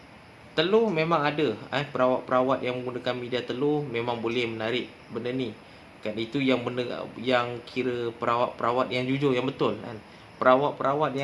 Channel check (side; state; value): both; identical; correlation 1.00